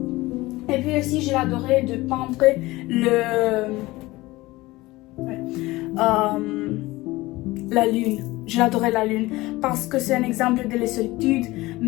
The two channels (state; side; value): quieter; right; 19.7 dB